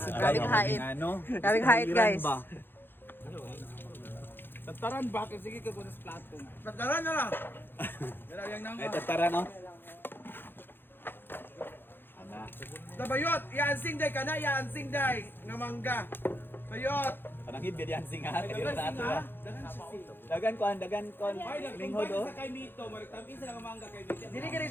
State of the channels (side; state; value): right; late; 0.10 ms